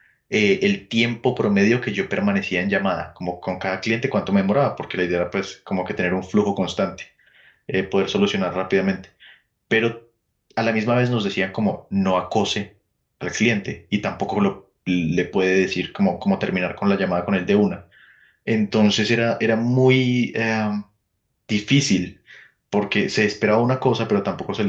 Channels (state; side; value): identical; both; correlation 1.00